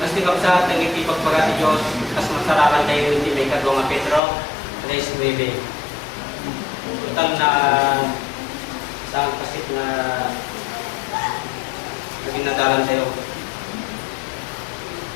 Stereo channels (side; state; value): right; drops out; at 4.2 s